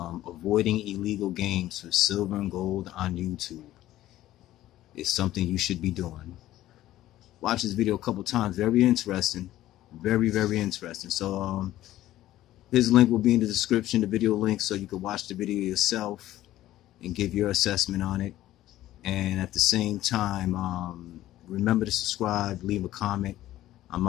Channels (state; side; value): quieter; right; 14.4 dB